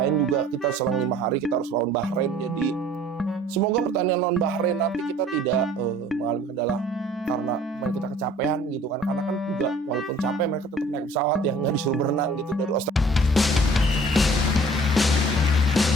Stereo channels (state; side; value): normal; both; correlation 0.51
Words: juga kita selang 5 hari kita harus lawan Bahrain. Jadi semoga pertandingan lawan Bahrain nanti kita tidak mengalami kendala karena main kita kecapean gitu kan. Karena kan juga walaupun capek mereka tetap naik pesawat ya, nggak disuruh berenang gitu dari Australia.